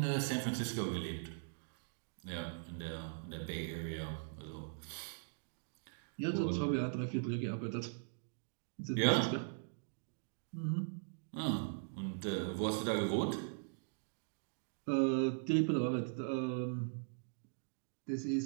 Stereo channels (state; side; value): silent; left; digital silence